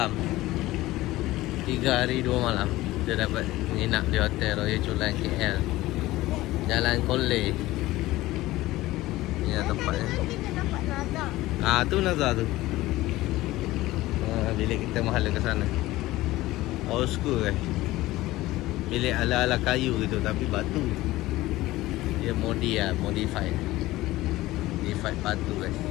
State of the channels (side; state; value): right; quieter; 17.6 dB